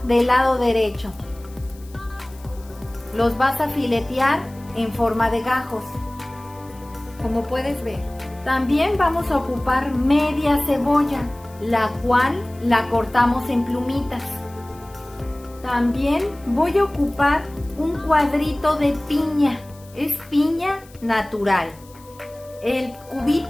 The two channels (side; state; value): left; noise; hiss, 25 dB below the sound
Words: del lado derecho. Los vas a filetear en forma de gajos, como puedes ver. También vamos a ocupar media cebolla, la cual la cortamos en plumitas. También voy a ocupar un cuadrito de piña, es piña natural. El